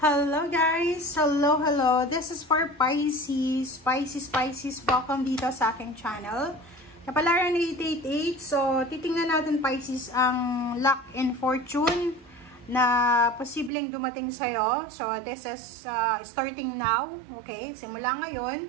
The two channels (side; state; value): left; drops out; at 13.7 s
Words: guys! Hello! This is for Pisces. Pisces, welcome dito sa aking channel. Kapalaran 888. So, titingnan natin Pisces ang luck and fortune na posibleng dumating sa'yo. So, this is starting now. Okay? Simula ngayon.